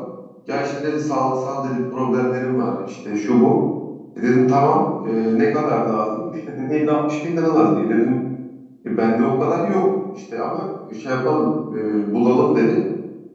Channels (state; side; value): identical; both; correlation 1.00